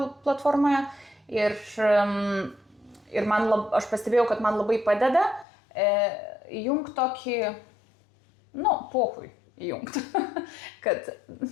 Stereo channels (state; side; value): drops out; right; at 5.5 s